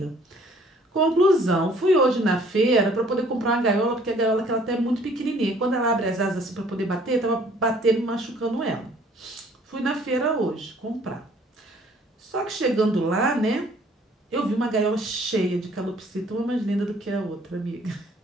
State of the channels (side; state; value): both; normal; correlation 0.58